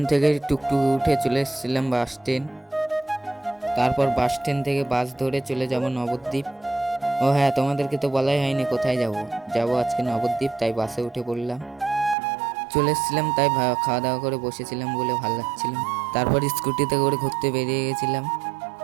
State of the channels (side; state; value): left; drops out; at 12.2 s